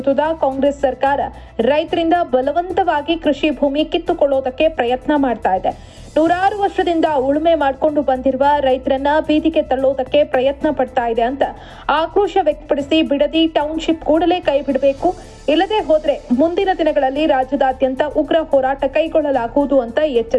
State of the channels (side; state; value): both; identical; correlation 1.00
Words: ಕಾಂಗ್ರೆಸ್ ಸರ್ಕಾರ ರೈತರಿಂದ ಬಲವಂತವಾಗಿ ಕೃಷಿ ಭೂಮಿ ಕಿತ್ತುಕೊಳ್ಳೋದಕ್ಕೆ ಪ್ರಯತ್ನ ಮಾಡ್ತಾ ಇದೆ. 106 ವರ್ಷದಿಂದ ಉಳುಮೆ ಮಾಡಿಕೊಂಡು ಬಂದಿರುವ ರೈತರನ್ನ ಬೀದಿಗೆ ತಳ್ಳೋದಕ್ಕೆ ಪ್ರಯತ್ನ ಪಡ್ತಾ ಇದೆ ಅಂತ ಆಕ್ರೋಶ ವ್ಯಕ್ತಪಡಿಸಿ, ಬಿಡದಿ ಟೌನ್ಶಿಪ್ ಕೂಡಲೇ ಕೈ ಬಿಡಬೇಕು, ಇಲ್ಲದೆ ಹೋದ್ರೆ ಮುಂದಿನ ದಿನಗಳಲ್ಲಿ ರಾಜ್ಯದಾದ್ಯಂತ ಉಗ್ರ ಹೋರಾಟ ಕೈಗೊಳ್ಳಲಾಗುವುದು ಅಂತ